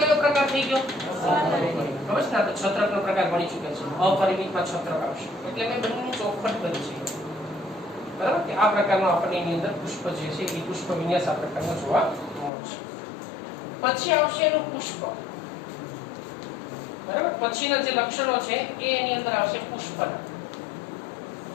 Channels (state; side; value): drops out; right; at 12.5 s